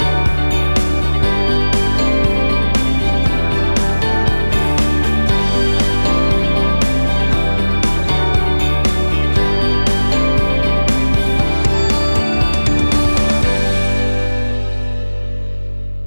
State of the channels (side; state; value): both; inverted; correlation -1.00